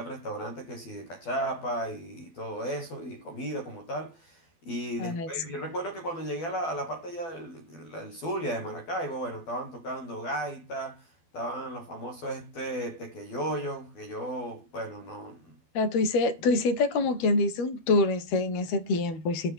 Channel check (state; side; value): late; right; 12 ms